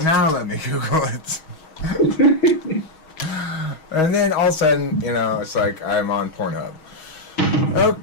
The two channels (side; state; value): right; late; 6.3 ms